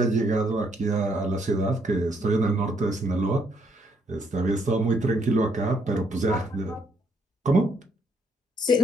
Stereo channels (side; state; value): both; normal; correlation 0.71